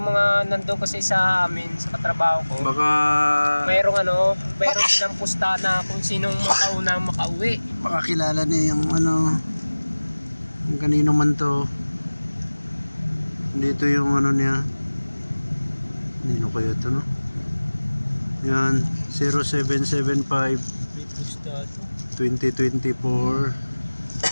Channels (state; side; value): inverted; both; correlation -1.00